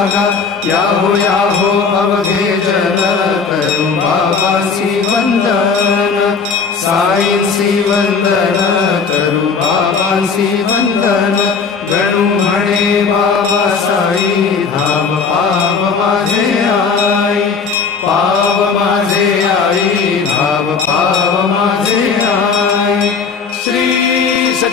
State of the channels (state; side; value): quieter; right; 5.4 dB